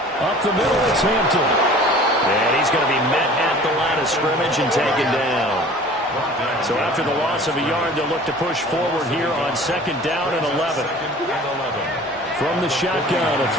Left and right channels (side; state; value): both; normal; correlation 0.45